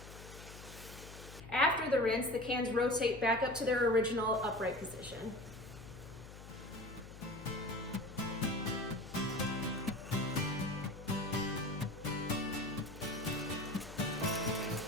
After the rinse, the cans rotate back up to their original upright position.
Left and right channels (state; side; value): noise; left; hum, 14 dB below the sound